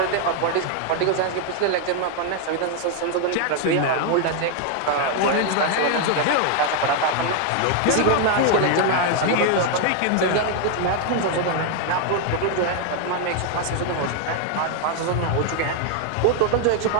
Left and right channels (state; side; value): different; both; correlation 0.00